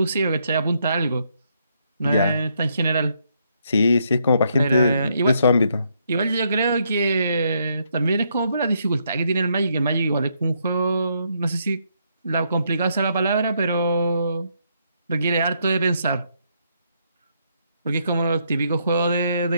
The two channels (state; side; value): inverted; both; correlation -0.74